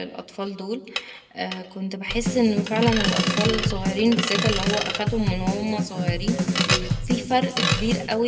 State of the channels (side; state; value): both; identical; correlation 1.00